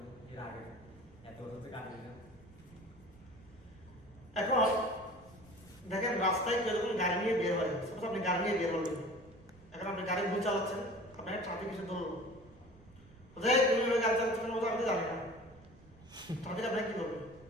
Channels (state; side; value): noise; right; rumble, 23 dB below the sound